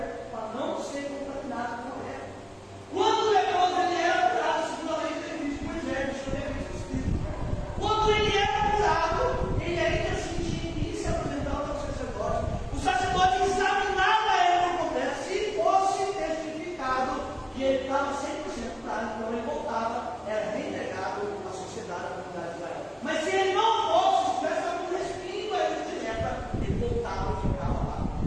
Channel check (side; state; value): both; identical; correlation 1.00